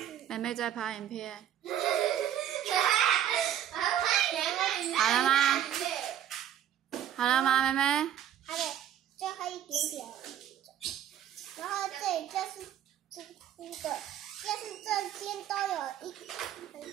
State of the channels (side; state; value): left; quieter; 10.6 dB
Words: 妹妹在拍影片。好了吗？好了吗，妹妹？还得最后一点点。然后这里就是凸的，就是这边都有很